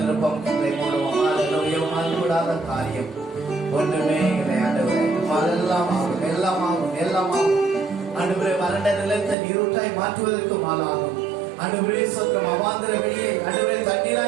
கண்களை மூடுவோம். ஹalleluya. மாறுபடாத காரியம் ஒன்றுமே இல்லை ஆண்டவரே. எல்லாம் ஆகும், எல்லாம் ஆகும், எல்லாம் ஆகும். ஆண்டவரே, வறண்ட நிலத்தை நீரூற்றாய் மாற்றுவதற்கு மாலாகும். ஆண்டவரே ஸ்தோத்திரம். அவாந்திர வெளியை ஆண்டவரே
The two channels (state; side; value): drops out; left; at 9.3 s